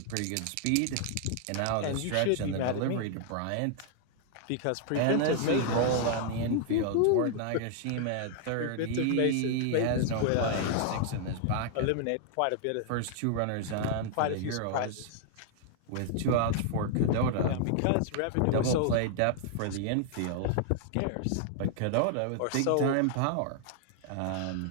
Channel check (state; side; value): different; both; correlation 0.00